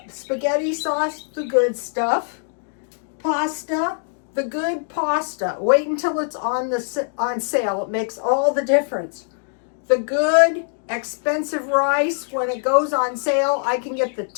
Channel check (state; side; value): silent; right; 64 dB below the other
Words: spaghetti sauce, the good stuff. Pasta, the good pasta. Wait until it's on sale. It makes all the difference. The good expensive rice, when it goes on sale, I can get the